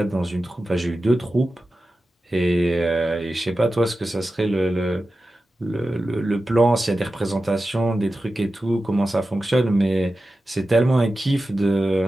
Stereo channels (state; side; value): normal; both; correlation 0.93